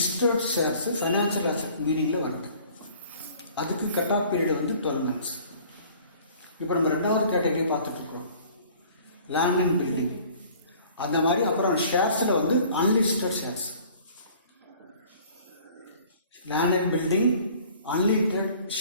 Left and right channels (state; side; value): inverted; both; correlation -0.51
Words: ஷேர்ஸ் ஃபைனான்ஷியல் அசெட் மீனிங்கில் வருது. அதுக்கு கட் ஆஃப் பீரியட் வந்து 12 months. இப்போ நம்ம ரெண்டாவது கேட்டகரி பார்த்துட்ருக்குறோம், லேண்ட் அண்ட் பில்டிங். அந்த மாதிரி அப்புறம் ஷேர்ஸில் வந்து unlisted shares, land and building, unlisted